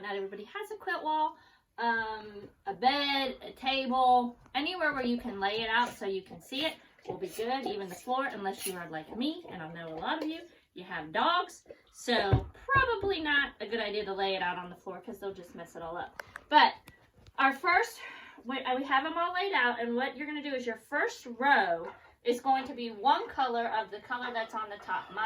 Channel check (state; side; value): identical; both; correlation 1.00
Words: everybody has a quilt wall. A bed, a table, anywhere where you can lay it out so you can see it will be good. Even the floor, unless you are like me, and I know a lot of you have dogs, so probably not a good idea to lay it out on the floor because they'll just mess it all up. But our first, we have them all laid out, and what you're going to do is your first row is going to be one color of the color that's on the top.